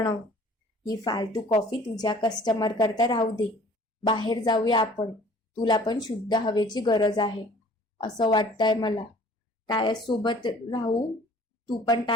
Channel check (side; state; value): both; normal; correlation 0.51